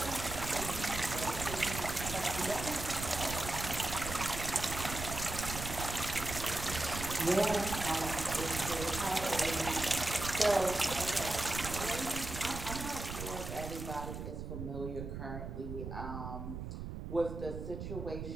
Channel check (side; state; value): right; noise; rumble, 7 dB below the sound